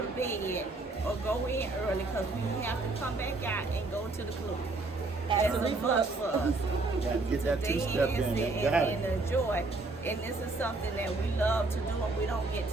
to bed or go in early because we have to come back out and go to the club. That's a must for us. Gotta get that two-step in. And enjoy. And this is something that we love to do and we don't get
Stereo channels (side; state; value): left; quieter; 3.3 dB